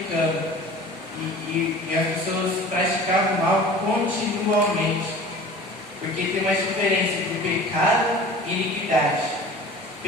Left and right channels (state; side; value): normal; both; correlation 0.41